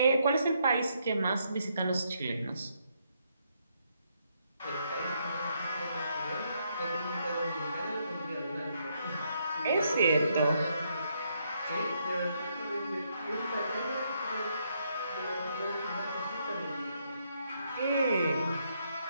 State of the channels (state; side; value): inverted; both; correlation -0.75